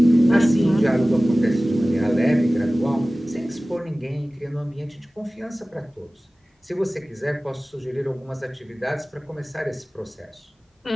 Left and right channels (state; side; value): normal; both; correlation 0.97